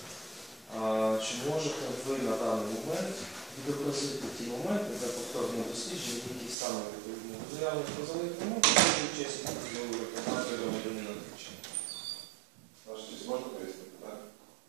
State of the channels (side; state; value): left; drops out; at 6.6 s